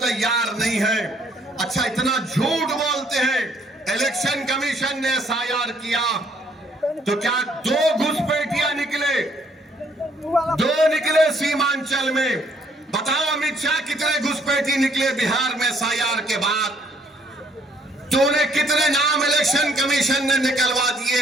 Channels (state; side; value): normal; both; correlation 0.65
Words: नहीं है। अच्छा, इतना झूठ बोलते हैं। इलेक्शन कमीशन ने SIR किया तो क्या 2 घुसपैठिया निकले? 2 निकले सीमांचल में। बताओ अमित शाह कितने घुसपैठी निकले बिहार में SIR के बाद? तूने कितने नाम इलेक्शन कमीशन ने निकलवा